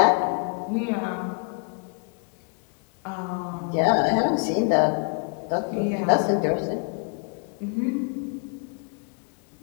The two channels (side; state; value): right; quieter; 38.5 dB